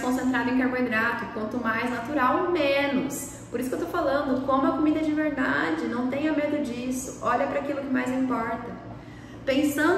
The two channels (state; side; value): identical; both; correlation 1.00